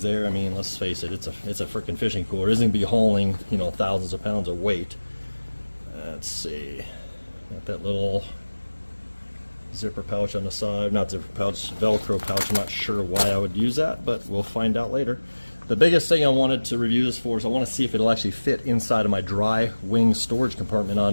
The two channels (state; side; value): inverted; both; correlation -1.00